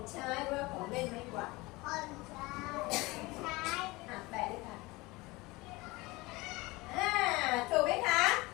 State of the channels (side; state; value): right; quieter; 22.4 dB